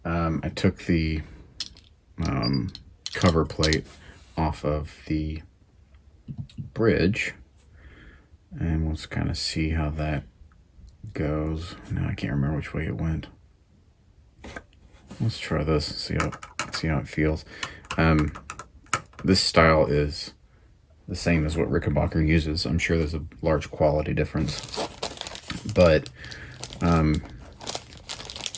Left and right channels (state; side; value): identical; both; correlation 1.00